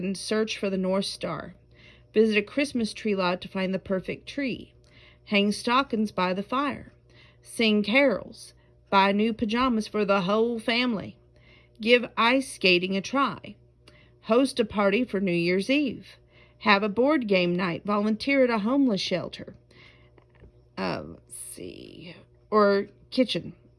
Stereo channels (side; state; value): both; identical; correlation 1.00